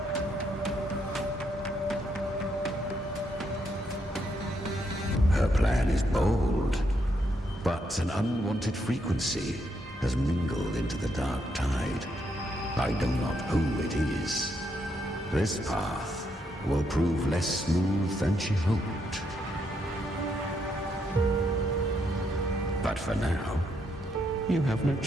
Her plan is bold, but an unwanted frequency has mingled into the dark tide. I know not who it is. This path will prove less smooth than she hoped. But for now, you have no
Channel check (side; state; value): both; normal; correlation 0.77